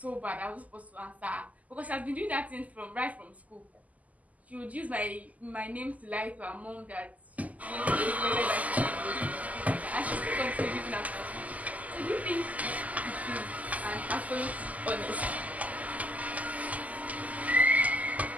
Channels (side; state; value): left; late; 0.075 ms